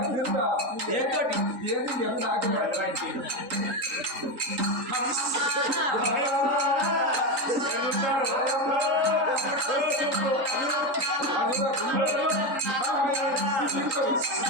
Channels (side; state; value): left; late; 3.9 ms